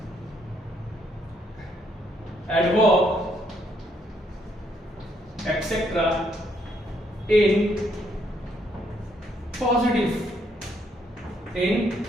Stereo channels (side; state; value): both; normal; correlation 0.72